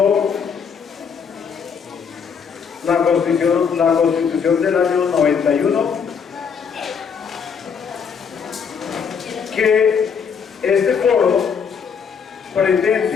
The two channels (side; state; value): right; quieter; 6.5 dB